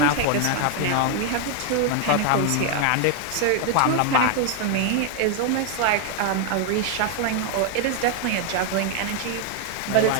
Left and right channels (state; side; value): different; both; correlation 0.01